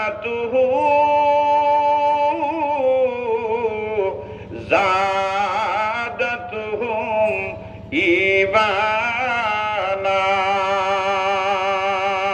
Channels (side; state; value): both; identical; correlation 1.00